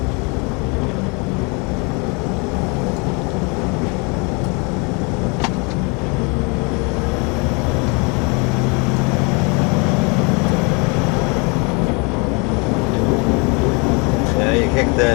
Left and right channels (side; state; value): right; quieter; 31.5 dB